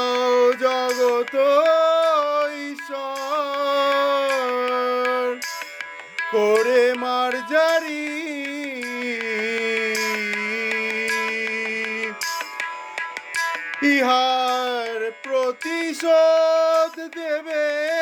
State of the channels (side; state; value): both; identical; correlation 1.00